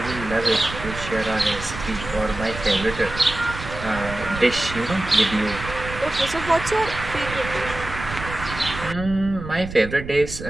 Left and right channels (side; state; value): right; noise; rumble, 10 dB below the sound